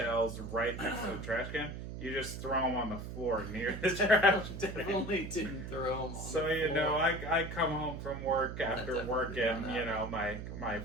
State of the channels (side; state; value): right; noise; hum, 8 dB below the sound